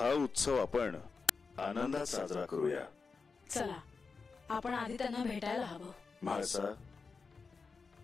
उत्सव आपण आनंदात साजरा करूया. चला, आपण आधी त्यांना भेटायला हवं. म्हाळसा,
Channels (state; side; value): quieter; right; 4.7 dB